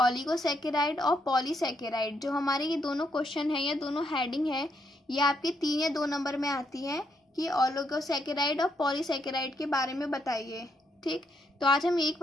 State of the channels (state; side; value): normal; both; correlation 0.77